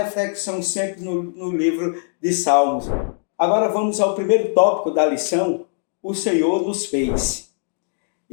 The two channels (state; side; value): silent; right; 63 dB below the other